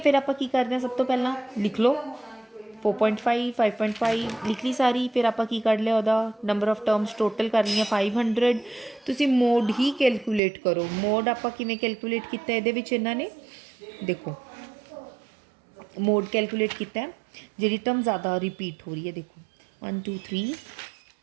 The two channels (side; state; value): left; drops out; at 10.4 s